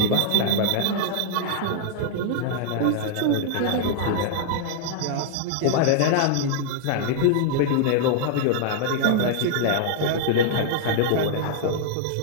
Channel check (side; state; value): both; different; correlation -0.01